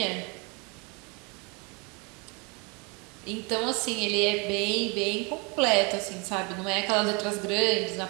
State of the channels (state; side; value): quieter; left; 30.8 dB